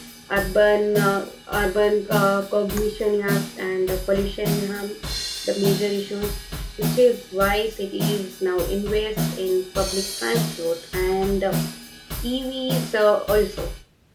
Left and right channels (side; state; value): both; identical; correlation 1.00